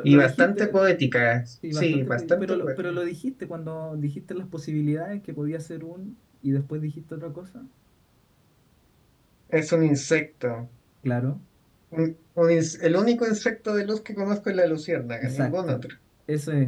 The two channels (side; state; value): both; identical; correlation 1.00